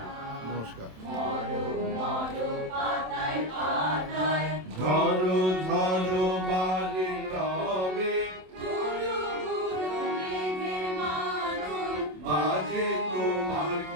নমস্কার। ঝড়ো ঝড়ো বাড়ি রবে বাজে তোমার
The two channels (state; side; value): late; left; 27 ms